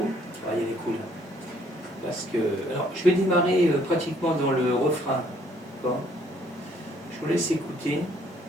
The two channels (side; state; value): both; normal; correlation 0.64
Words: Ah, il y a des coups là. Parce que, alors, je vais démarrer pratiquement dans le refrain. D'accord. Je vous laisse écouter.